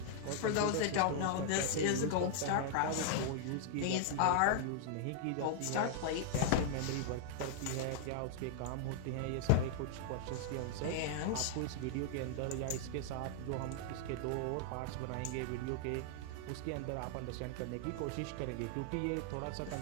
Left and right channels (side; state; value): both; different; correlation -0.01